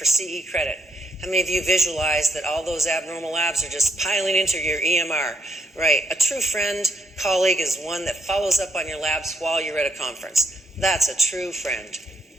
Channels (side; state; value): both; normal; correlation 0.75